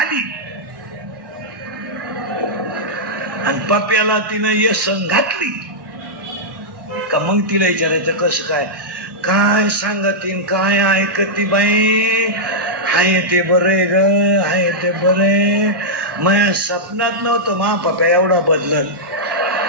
आणि पप्याला तिनं येसन घातली का मग तिला विचारायचं कसं काय सांगतीन, काय ऐकती बाई. हाय ते बरे ग, हाय ते बरे. माझ्या स्वप्नात नव्हतं मा पप्या एवढा बदलत,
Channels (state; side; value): late; left; 1.1 ms